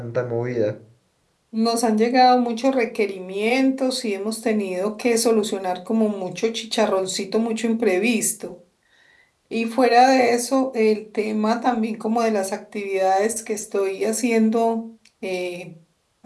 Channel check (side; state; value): both; identical; correlation 1.00